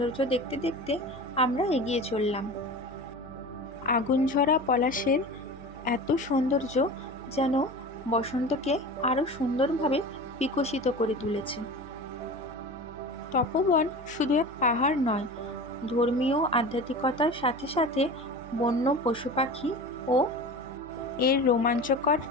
দেখতে দেখতে আমরা এগিয়ে চললাম। আগুনঝরা পলাশের এত সৌন্দর্য যেন বসন্তকে আরও সুন্দরভাবে বিকশিত করে তুলেছে। তপোবন শুধু এক পাহাড় নয়, ধর্মীয় আধ্যাত্মিকতার সাথে সাথে বন্য পশু পাখি ও এর রোমাঞ্চকর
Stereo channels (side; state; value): right; noise; hum, 19 dB below the sound